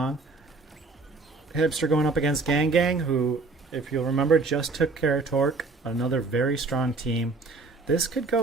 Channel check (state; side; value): quieter; left; 3.7 dB